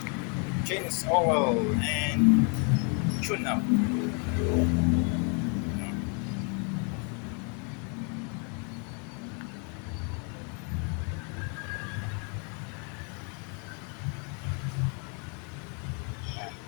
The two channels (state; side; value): quieter; right; 38.0 dB